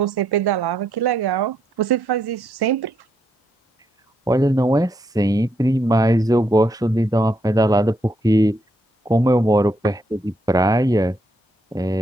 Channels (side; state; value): both; normal; correlation 0.76